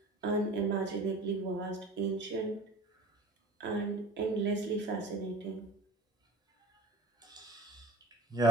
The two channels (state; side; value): normal; both; correlation 0.39